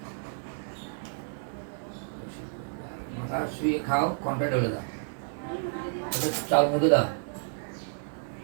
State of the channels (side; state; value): left; silent; digital silence